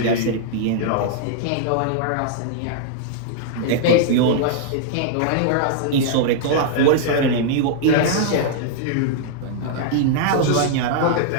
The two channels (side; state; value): both; different; correlation -0.01